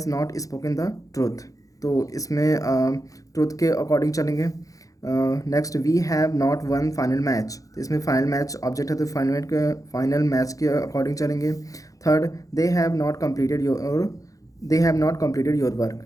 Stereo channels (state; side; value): late; right; 0.17 ms